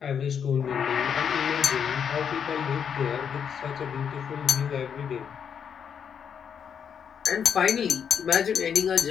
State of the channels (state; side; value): quieter; right; 7.6 dB